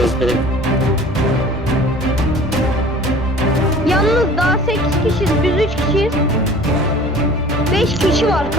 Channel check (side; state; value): both; normal; correlation 0.46